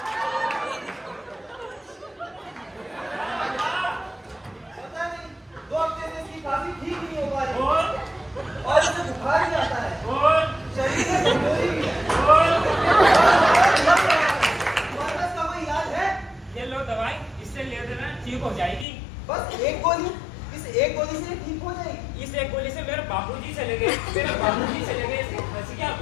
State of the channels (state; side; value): drops out; right; at 18.9 s